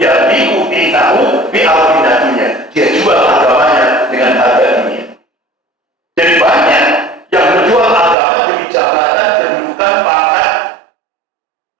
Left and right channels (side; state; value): left; drops out; at 8.2 s